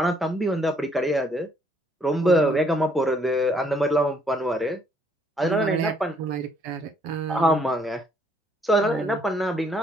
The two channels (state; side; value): normal; both; correlation 0.67